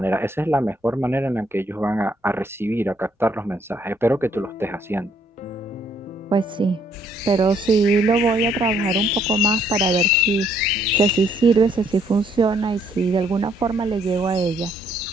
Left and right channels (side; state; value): both; normal; correlation 0.67